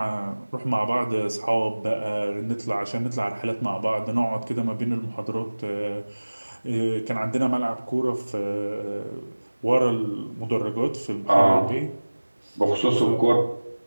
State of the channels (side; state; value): both; inverted; correlation -1.00